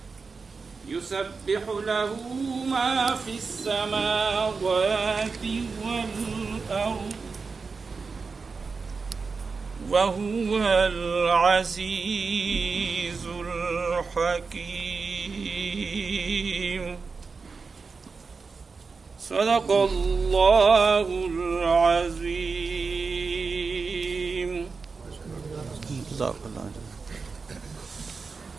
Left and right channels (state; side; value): quieter; left; 4.7 dB